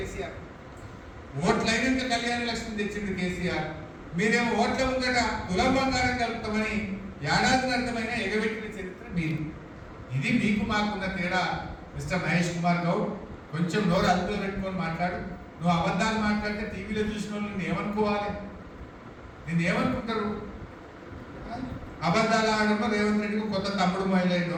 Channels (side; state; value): both; identical; correlation 1.00